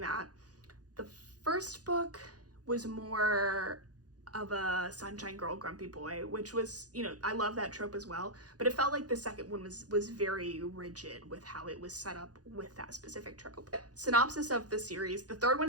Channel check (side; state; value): left; late; 0.68 ms